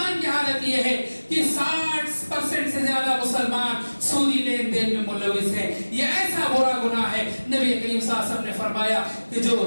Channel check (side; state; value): both; inverted; correlation -1.00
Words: کی حالت یہ ہے کہ 60% سے زیادہ مسلمان سودی لین دین میں ملوث ہیں. یہ ایسا برا گناہ ہے, نبی کریم صلی اللہ علیہ وسلم نے فرمایا کہ